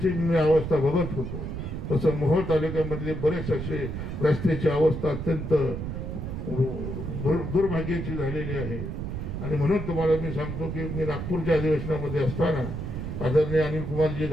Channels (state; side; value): noise; right; rumble, 5 dB below the sound